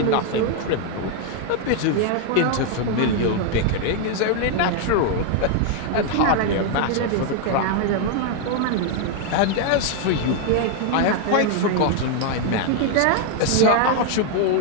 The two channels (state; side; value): different; both; correlation 0.00